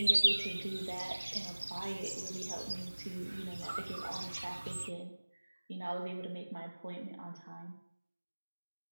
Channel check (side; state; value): both; inverted; correlation -1.00